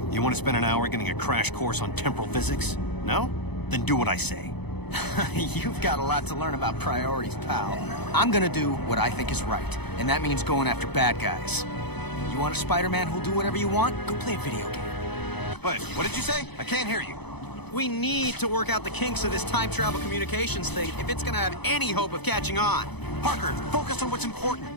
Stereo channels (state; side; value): late; right; 0.99 ms